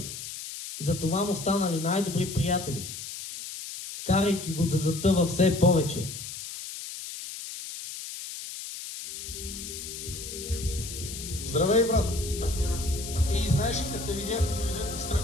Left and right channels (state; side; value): noise; left; hiss, 9 dB below the sound